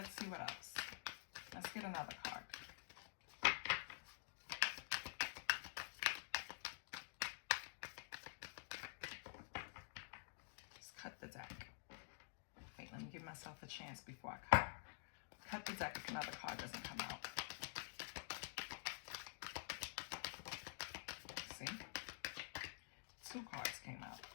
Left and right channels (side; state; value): right; silent; digital silence